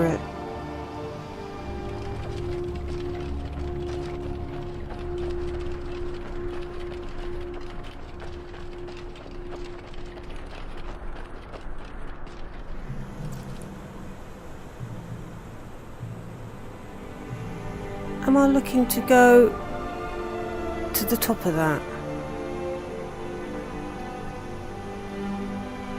it. Am I looking to go to the top of that?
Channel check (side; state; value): both; identical; correlation 1.00